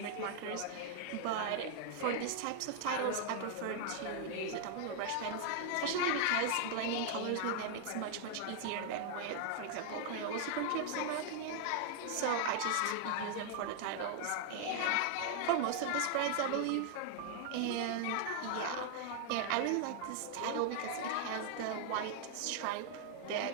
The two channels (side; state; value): both; different; correlation 0.00